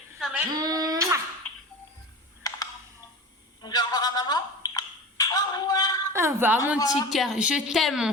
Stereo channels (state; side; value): normal; both; correlation 0.32